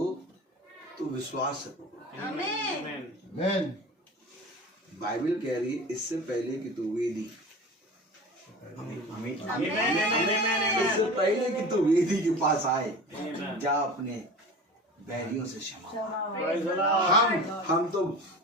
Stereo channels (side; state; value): both; normal; correlation 0.35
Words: तो विश्वास से पकड़ो। आमीन। बाइबल कह रही है इससे पहले कि तू वेदी, इससे पहले कि तू वेदी के पास आए जा अपने बैरियों से क्षमा। हम तो